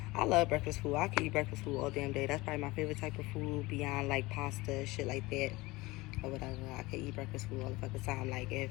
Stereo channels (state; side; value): quieter; right; 21.2 dB